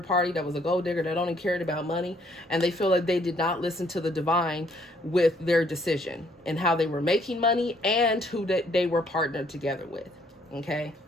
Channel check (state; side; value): normal; both; correlation 0.66